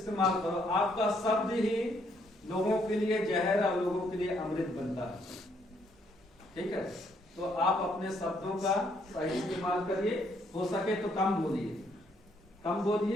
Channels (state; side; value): normal; both; correlation 0.70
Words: करो। आपका शब्द ही लोगों के लिए जहर और लोगों के लिए अमृत बनता है, ठीक है। तो आप अपने शब्दों का सही इस्तेमाल करिए। हो सके तो कम